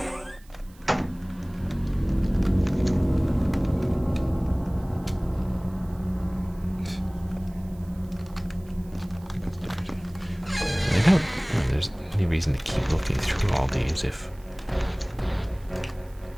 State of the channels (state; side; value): noise; right; hiss, 28 dB below the sound